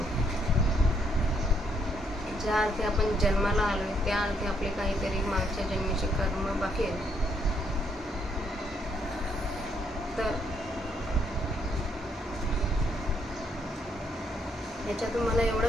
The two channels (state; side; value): normal; both; correlation 0.72